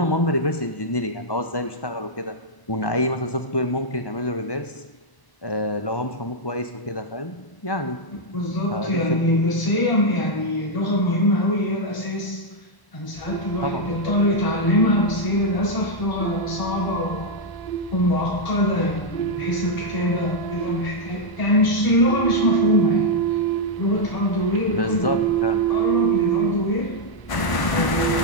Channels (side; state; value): right; late; 1.0 ms